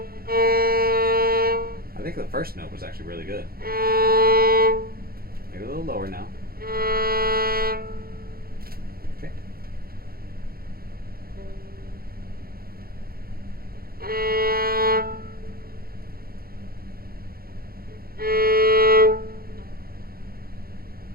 I think the first note was actually really good. Maybe a little lower now. Okay.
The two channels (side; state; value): left; late; 0.44 ms